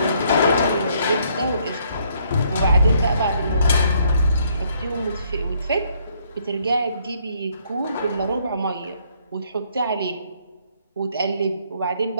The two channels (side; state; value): both; inverted; correlation -0.67